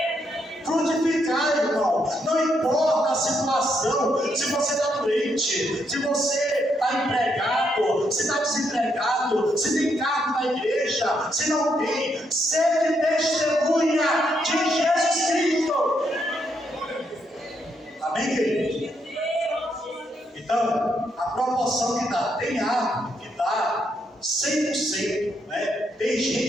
Frutificar, irmão. Não importa a situação, se você está doente, se você está empregado, se está desempregado, se tem cargo na igreja, se não tem, seja testemunha de Jesus Cristo. Amém, queridos? Então, a proporção que dá, tem árvore que dá 100%, né? Tem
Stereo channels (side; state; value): both; normal; correlation 0.77